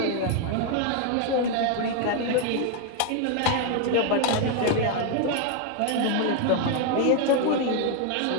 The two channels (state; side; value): different; both; correlation 0.01